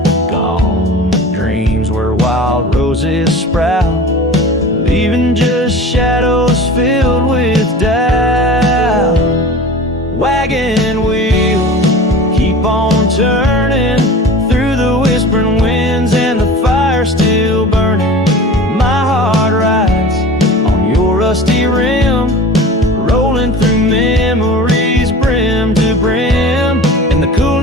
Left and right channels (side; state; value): both; normal; correlation 0.38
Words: Gone dreams where wild roses sprout, leaving just shadows filled with doubt. Wagon wheel, keep on turning through the whispering winds and the fire still burning. My heart rides on your rusty rim, rolling through memories brim to brim. In the cool